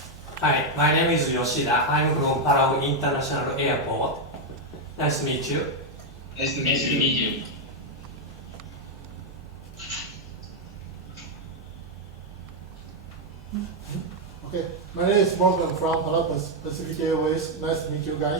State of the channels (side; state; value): both; normal; correlation 0.02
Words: Hi, my name is Yoshida. I'm from Palau International Airport. Nice to meet you. Nice to meet you. Okay, my name is Morgan from Palau Pacific Airways. Nice to meet you